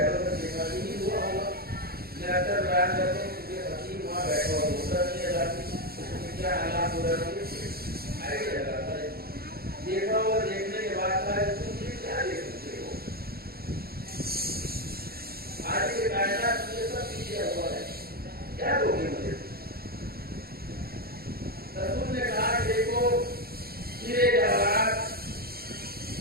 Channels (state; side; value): late; left; 0.44 ms